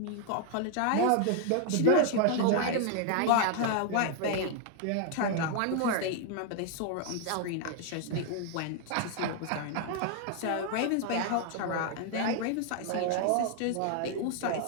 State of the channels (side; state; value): both; different; correlation 0.00